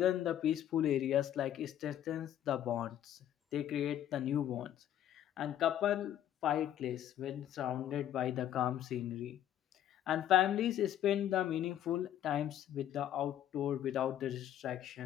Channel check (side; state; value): right; quieter; 11.2 dB